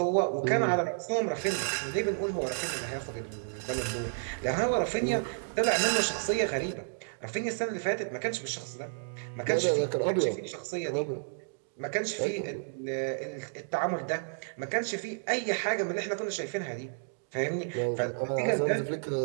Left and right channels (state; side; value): silent; left; digital silence